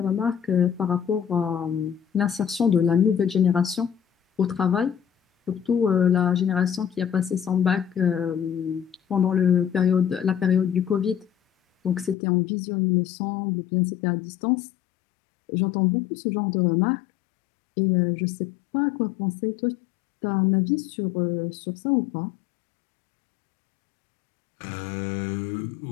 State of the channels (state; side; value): drops out; right; at 12.2 s